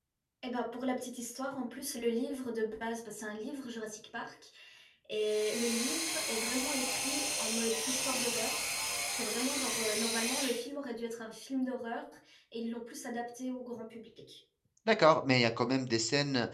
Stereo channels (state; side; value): identical; both; correlation 1.00